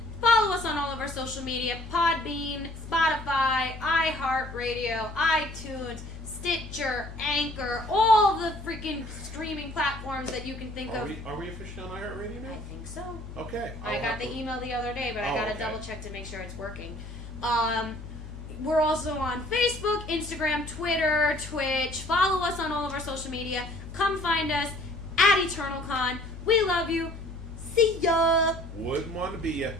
Follow us on all of our social media, Podbean, Spotify, iHeartRadio, iTunes, Stitcher, Anchor, all the freaking streaming platforms that you can think of. Are we officially on iHeartRadio now? I think so. Okay. I got the email the other day, but I got to double check to make sure it's working. We're also on Facebook, Instagram, Twitter, Twitch. Follow us on all of our social media. Come find us at EternalCon. We love you. See ya. Wouldn't want to be ya,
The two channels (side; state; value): left; noise; hum, 12 dB below the sound